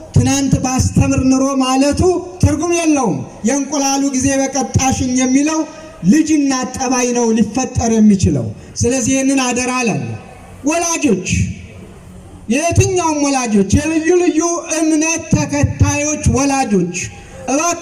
ትናንት ባስተምር ኑሮ ማለቱ ትርጉም የለውም። የእንቁላሉ ጊዜ በቀጣሽኝ የሚለው ልጅና ጠባይ ነው ሊፈጠር የሚችለው። ስለዚህ ይህንን አደራ አለን። ወላጆች የትኛውም ወላጆች የልዩ ልዩ እምነት ተከታዮች ወላጆች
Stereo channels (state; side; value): identical; both; correlation 1.00